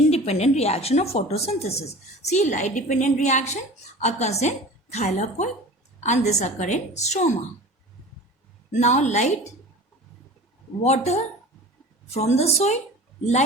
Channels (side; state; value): both; normal; correlation 0.38